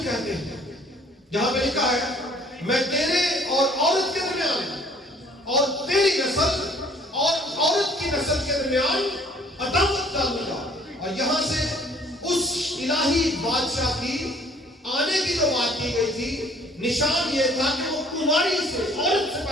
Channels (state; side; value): normal; both; correlation 0.57